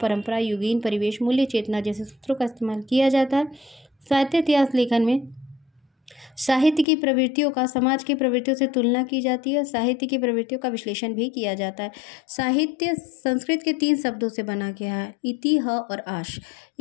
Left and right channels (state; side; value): drops out; right; at 6.9 s